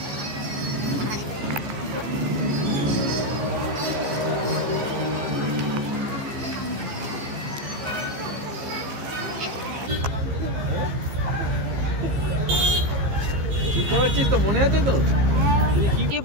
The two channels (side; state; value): left; late; 15 ms